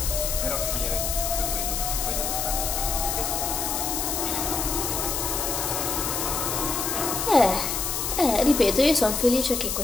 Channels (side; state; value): left; noise; hiss, 1 dB below the sound